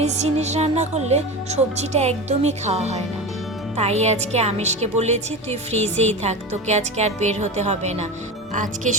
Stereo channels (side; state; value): both; normal; correlation 0.26